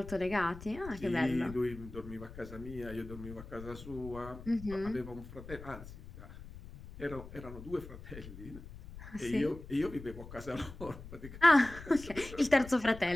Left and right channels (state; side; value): noise; left; rumble, 14 dB below the sound